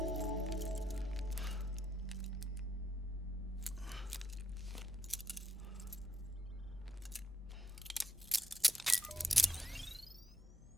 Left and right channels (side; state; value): both; normal; correlation 0.81